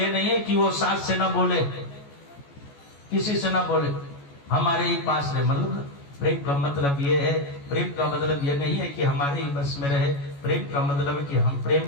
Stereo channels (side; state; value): right; late; 14 ms